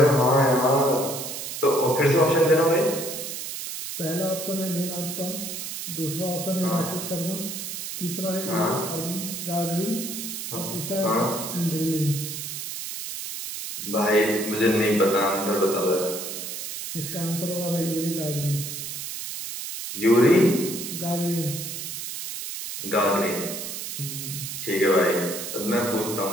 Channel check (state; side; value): noise; right; hiss, 6 dB below the sound